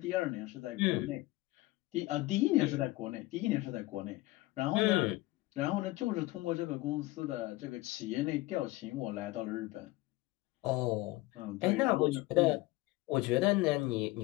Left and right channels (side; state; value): right; quieter; 19.7 dB